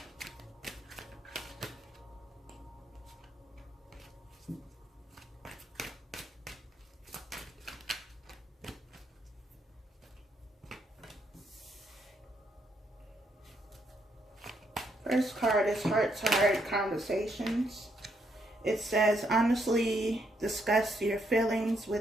First card is heart-to-heart conversations. It says, honestly discuss your feelings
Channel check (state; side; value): normal; both; correlation 0.75